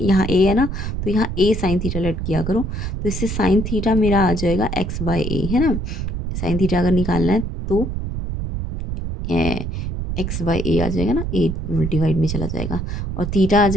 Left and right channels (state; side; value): noise; right; rumble, 4 dB below the sound